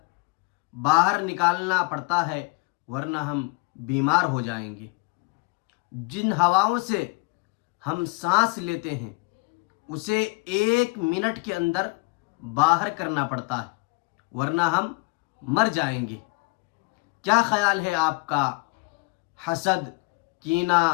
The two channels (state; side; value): quieter; right; 28.9 dB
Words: باہر نکالنا پڑتا ہے، ورنہ ہم بیمار ہو جائیں گے۔ جن ہواؤں سے ہم سانس لیتے ہیں اسے 1 منٹ کے اندر باہر کرنا پڑتا ہے، ورنہ ہم مر جائیں گے۔ کیا خیال ہے آپ کا حسد، کینہ،